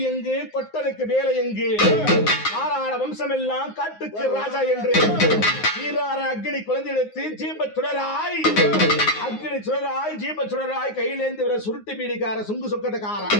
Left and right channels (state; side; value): late; right; 9.6 ms